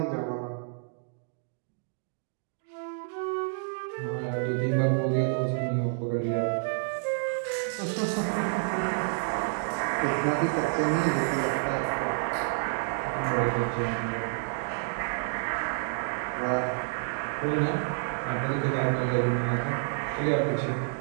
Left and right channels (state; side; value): silent; left; digital silence